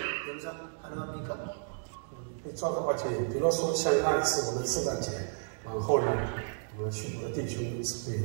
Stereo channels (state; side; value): silent; left; digital silence